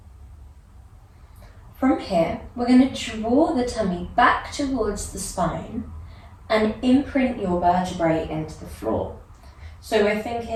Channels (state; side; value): identical; both; correlation 1.00